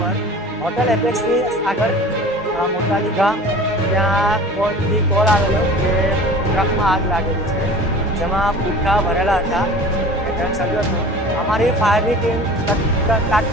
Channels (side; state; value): both; normal; correlation 0.41